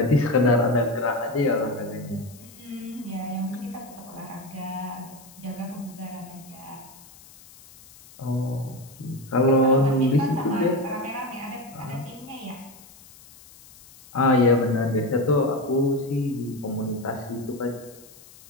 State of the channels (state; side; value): noise; left; hiss, 22 dB below the sound